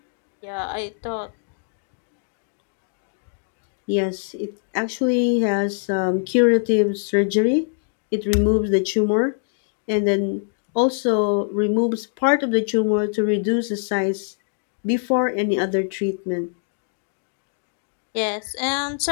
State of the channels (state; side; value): silent; right; digital silence